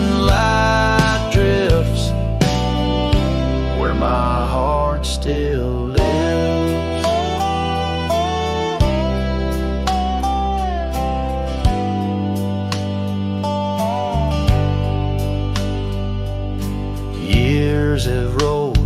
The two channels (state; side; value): identical; both; correlation 1.00